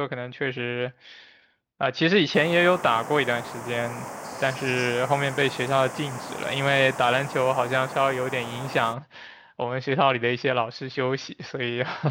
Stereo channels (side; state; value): both; identical; correlation 1.00